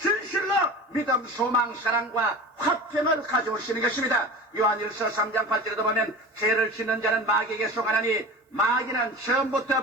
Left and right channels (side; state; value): both; normal; correlation 0.34